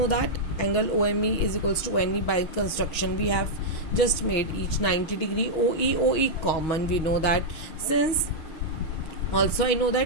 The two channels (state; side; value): late; right; 6.3 ms